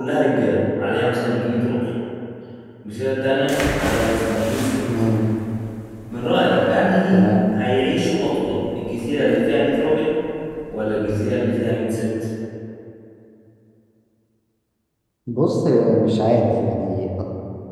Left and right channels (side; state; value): both; identical; correlation 1.00